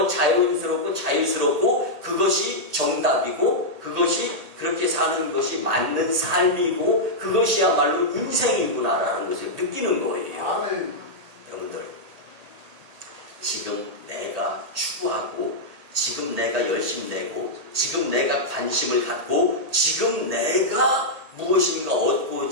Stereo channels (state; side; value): late; left; 1.8 ms